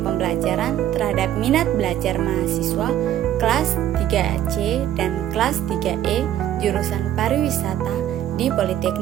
terhadap Minat Belajar Mahasiswa kelas 3C dan kelas 3E jurusan Pariwisata di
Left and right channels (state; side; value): quieter; left; 11.7 dB